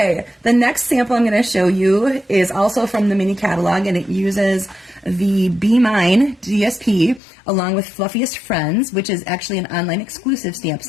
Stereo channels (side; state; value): right; drops out; at 7.2 s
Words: the next sample I'm going to show you is also from the mini catalog, and it uses the Be Mine DSP along with Fluffiest Friends, which is actually an online exclusive stamp